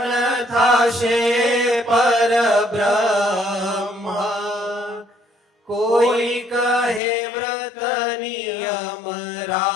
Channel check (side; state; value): right; drops out; at 7.0 s